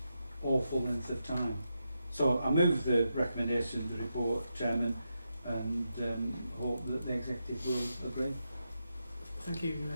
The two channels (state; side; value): inverted; both; correlation -0.86